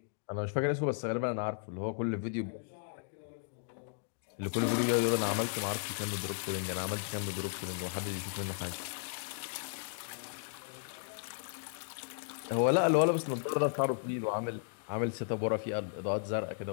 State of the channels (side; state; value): right; silent; digital silence